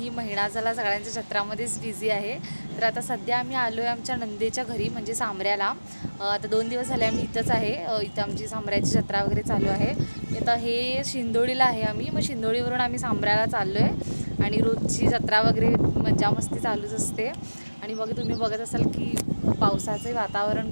महिना झाला सगळ्यांच्या जत्रामध्येच बिझी आहे. तर आता सध्या आम्ही आलो आहे आमच्या नंदेच्या घरी म्हणजे सामऱ्याला. आता 2 दिवस झाले आम्ही इथंच आहे. इथं आमची सामऱ्याची जत्रा वगैरे चालू आहे. आता हे शिंदोळीला आहे आम्ही, मग शिंदोळीवरून आम्ही सामऱ्याला चाललो आहे आणि रोजची जत्रा वगैरे मजा मस्ती चालूच असते. आणि मग तुम्ही बघत असाल की पावसाचे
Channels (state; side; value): inverted; both; correlation -1.00